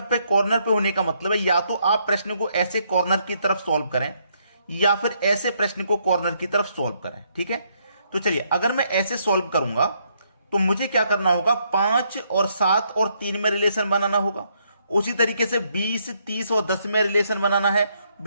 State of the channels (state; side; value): inverted; both; correlation -0.73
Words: पे कॉर्नर पे होने का मतलब है या तो आप प्रश्न को ऐसे कॉर्नर की तरफ सॉल्व करें या फिर ऐसे प्रश्न को कॉर्नर की तरफ सॉल्व करें। ठीक है, तो चलिए, अगर मैं ऐसे सॉल्व करूंगा तो मुझे क्या करना होगा, 5 और 7 और 3 में रिलेशन बनाना होगा। उसी तरीके से 20, 30 और 10 में रिलेशन बनाना है।